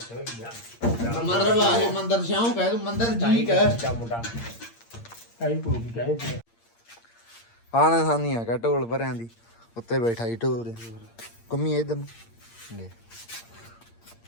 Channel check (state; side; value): late; right; 8.7 ms